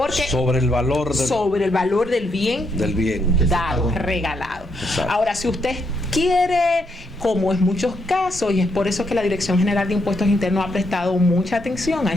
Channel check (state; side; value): normal; both; correlation 0.77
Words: sobre el valor del bien dado, regalado. Exacto. Ahora, si usted quiere, como en muchos casos, y es por eso que la Dirección General de Impuestos Internos ha prestado mucha atención a